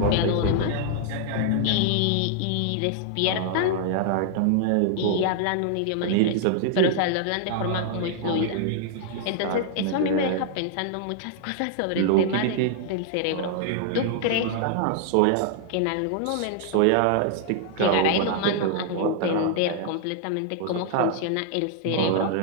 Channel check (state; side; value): different; both; correlation 0.00